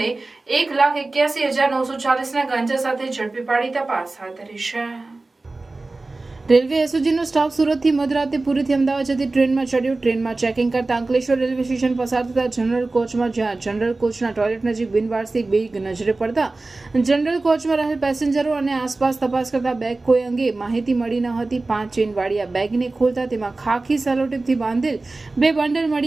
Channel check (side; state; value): left; quieter; 3.3 dB